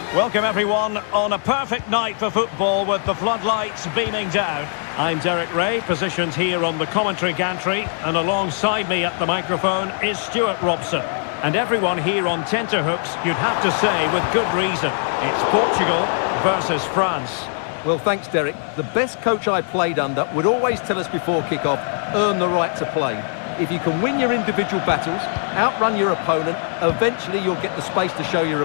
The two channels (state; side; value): silent; right; 60 dB below the other